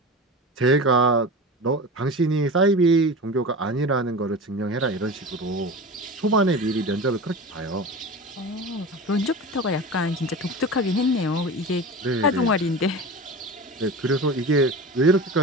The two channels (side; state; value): both; normal; correlation 0.30